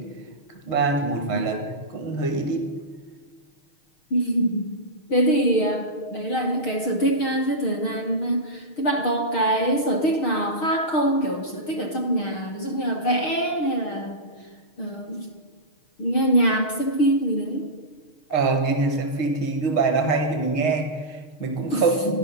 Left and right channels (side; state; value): right; late; 6.4 ms